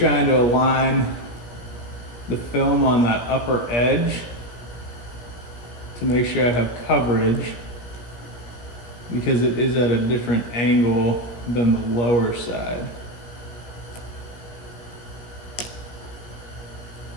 to align the film on that upper edge to make sure I have coverage. because it is at a different angle than the lower side.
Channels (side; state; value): right; late; 16 ms